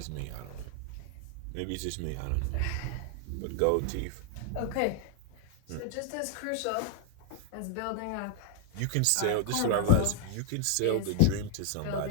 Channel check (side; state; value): both; different; correlation 0.00